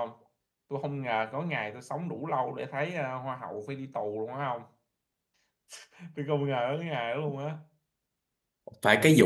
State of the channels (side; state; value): both; identical; correlation 1.00